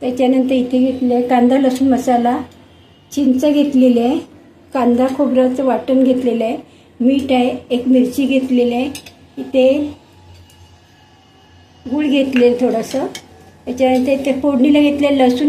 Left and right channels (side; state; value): both; identical; correlation 1.00